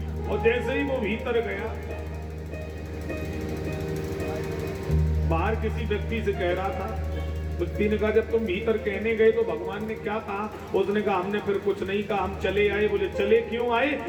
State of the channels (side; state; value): both; identical; correlation 1.00